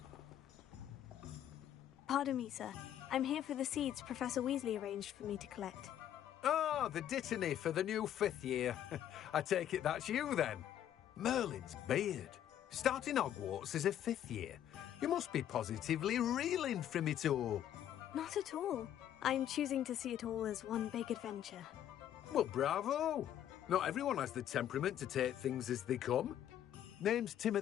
Pardon me, sir. I'm here for the seeds Professor Weasley arranged for me to collect. Oh, the dittany for the new 5th year. I take it that's you, then. Merlin's beard. Starting Hogwarts as a 5th year. You must be positively reeling from it all. Not at all. I'm choosing to see it all as one big adventure. Well, bravo. Not everyone has the temperament to take things as they come. Name's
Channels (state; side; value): quieter; right; 10.9 dB